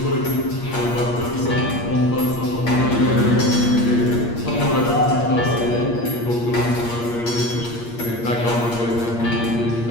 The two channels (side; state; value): right; late; 8.5 ms